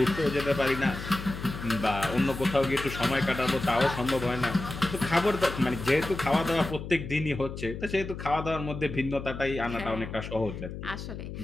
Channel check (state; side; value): noise; left; hum, 9 dB below the sound